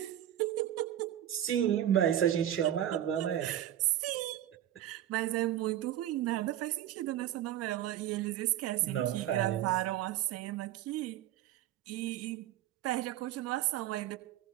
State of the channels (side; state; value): left; quieter; 12.0 dB